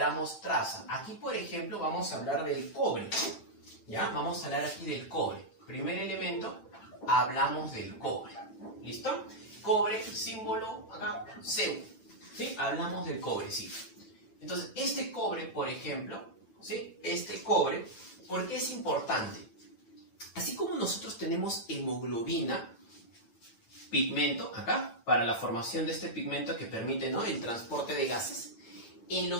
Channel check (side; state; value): right; late; 9.0 ms